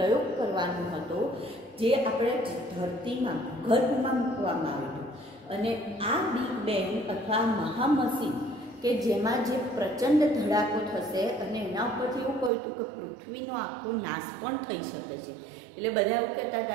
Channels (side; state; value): left; drops out; at 12.5 s